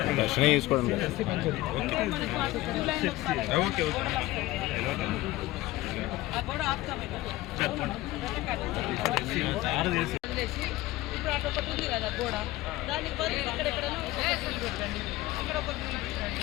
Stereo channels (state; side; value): quieter; right; 17.9 dB